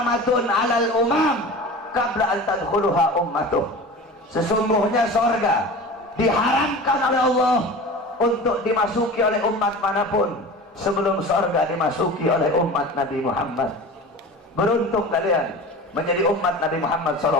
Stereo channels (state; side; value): normal; both; correlation 0.35